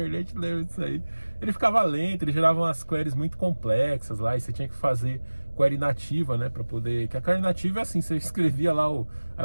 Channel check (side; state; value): both; inverted; correlation -1.00